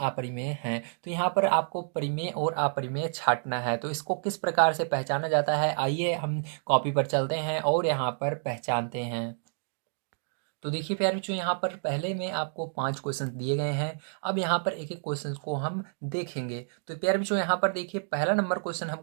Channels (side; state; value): left; silent; digital silence